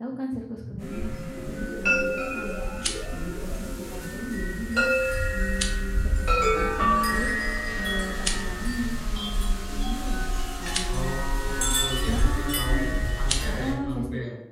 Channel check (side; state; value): both; identical; correlation 1.00